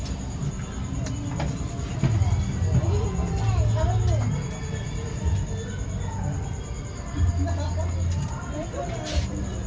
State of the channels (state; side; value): identical; both; correlation 1.00